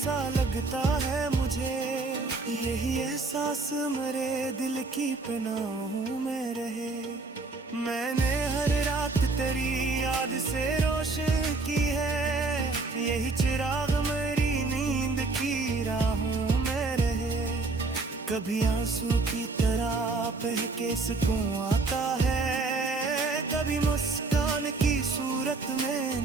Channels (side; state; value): left; quieter; 3.7 dB